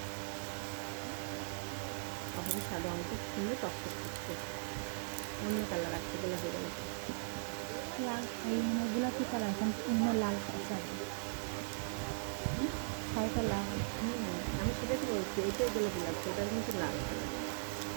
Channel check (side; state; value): left; silent; digital silence